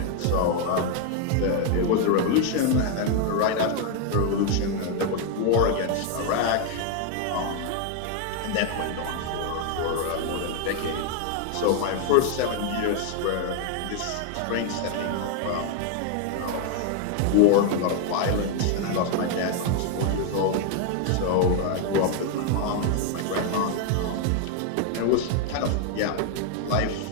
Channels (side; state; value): both; different; correlation 0.00